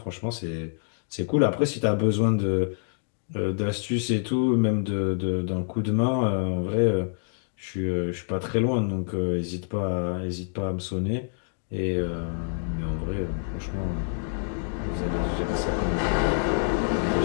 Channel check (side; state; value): right; silent; 60 dB below the other